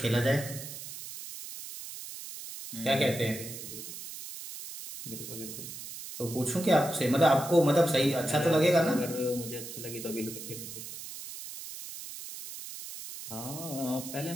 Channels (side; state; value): right; noise; hiss, 10 dB below the sound